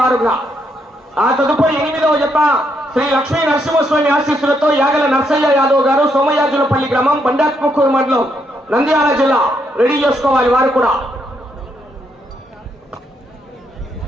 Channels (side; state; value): both; normal; correlation 0.76